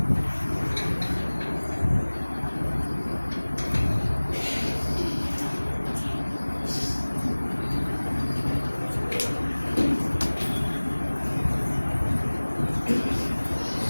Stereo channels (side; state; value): both; inverted; correlation -1.00